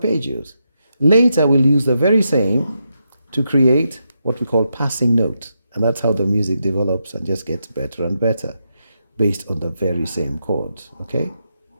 Later, we'll use the very same to create what we call passing notes, and that's how the music develops and just gets better and better based on the very same chords. Okay,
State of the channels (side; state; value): both; inverted; correlation -0.84